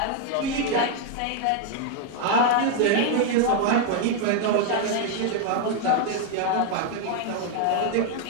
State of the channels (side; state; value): both; different; correlation 0.00